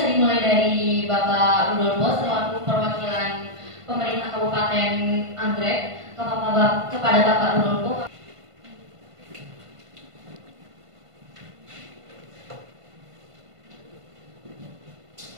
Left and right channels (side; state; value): left; late; 1.5 ms